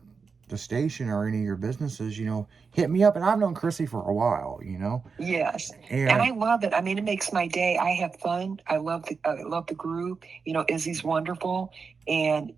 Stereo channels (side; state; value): left; quieter; 5.2 dB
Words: the station or any of your businesses, you know, hit me up. And I've known Chrissy for a while, you know. Yes. And I love it. I mean, it makes my day. I have fun. I love the group. You know, Izzy's wonderful. And,